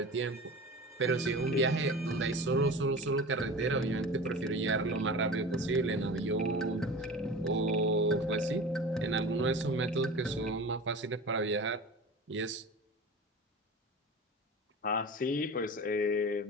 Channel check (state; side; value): normal; both; correlation 0.34